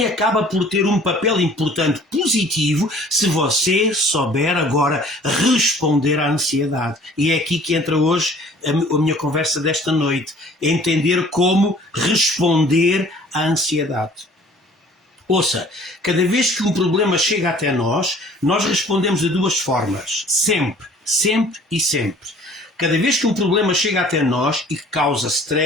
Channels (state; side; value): normal; both; correlation 0.52